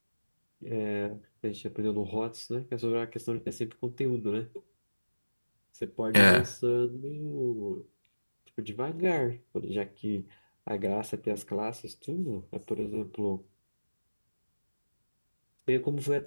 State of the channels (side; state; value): both; inverted; correlation -1.00